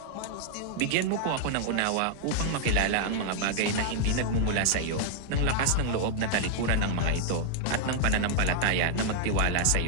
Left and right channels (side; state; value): both; different; correlation 0.00